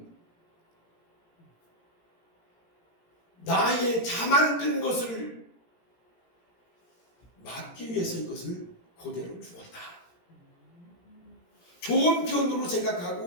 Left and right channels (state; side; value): late; right; 17 ms